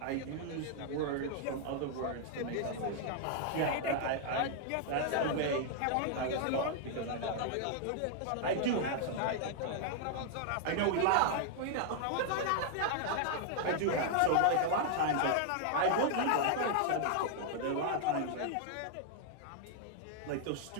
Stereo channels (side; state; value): both; different; correlation -0.01